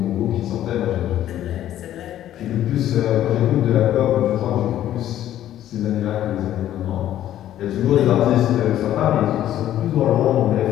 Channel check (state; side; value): quieter; right; 12.2 dB